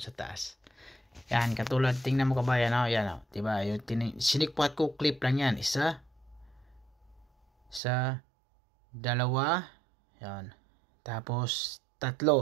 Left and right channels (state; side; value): drops out; left; at 7.8 s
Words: sa taas. Yan, katulad, tingnan mo kabayan, yan, diba, yung sinikpat ko, clip lang yan, isa, sa dalawa, yan, tapos